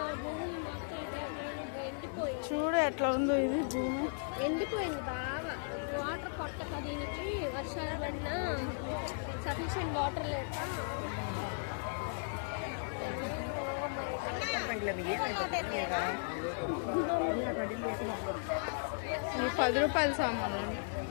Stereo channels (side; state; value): right; silent; digital silence